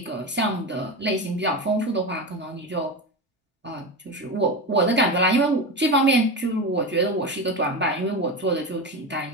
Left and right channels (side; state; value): both; normal; correlation 0.21